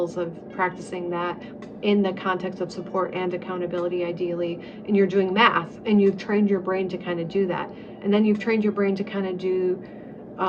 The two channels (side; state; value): both; identical; correlation 1.00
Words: of practicing that in the context of support and accountability, ideally, and you're doing math, and you've trained your brain to kind of do that. And then you've trained your brain to kind of do